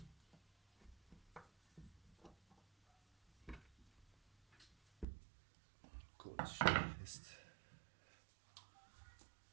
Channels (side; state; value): left; drops out; at 5.1 s